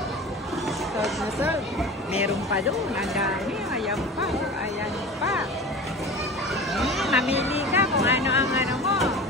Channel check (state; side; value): normal; both; correlation 0.35